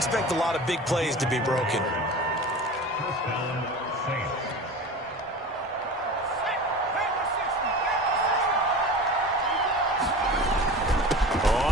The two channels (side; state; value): both; normal; correlation 0.35